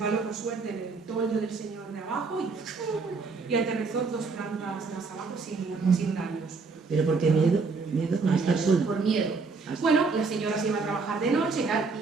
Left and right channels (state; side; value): quieter; left; 4.4 dB